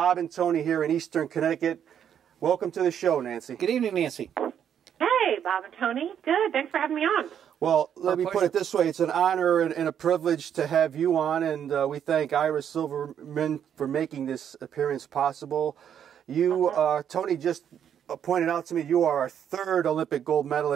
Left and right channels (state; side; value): quieter; left; 9.0 dB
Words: and Tony here in Eastern Connecticut. Welcome to the show, Nancy. Good evening, Nancy. Hey, Bob and Tony. Good. Thanks for having me on. Well, let me put it this way. It's an honor and a privilege to have you on, and we thank Ira Silverman for making this appearance possible. You, Tony, just pointed out to me you are our third Olympic gold